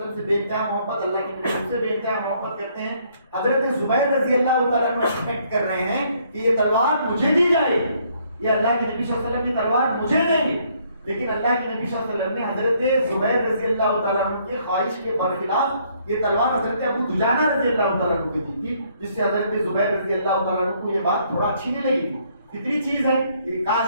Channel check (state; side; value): inverted; both; correlation -0.67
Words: سے بے انتہا محبت، اللہ کے نبی سے بے انتہا محبت کرتے ہیں۔ حضرت زبیر رضی اللہ تعالیٰ عنہ ایکسپیکٹ کر رہے ہیں کہ یہ تلوار مجھے دی جائے گی، یہ اللہ کے نبی صلی اللہ علیہ وسلم کی تلوار مجھے دیں گے۔ لیکن اللہ کے نبی صلی اللہ علیہ وسلم نے حضرت زبیر رضی اللہ تعالیٰ عنہ کی خواہش کے برخلاف یہ تلوار حضرت ابو دجانہ رضی اللہ تعالیٰ عنہ کو دی تھی، جس سے حضرت زبیر رضی اللہ تعالیٰ عنہ کو یہ بات تھوڑا اچھی نہیں لگی تھی۔ فطری چیز ہے کہ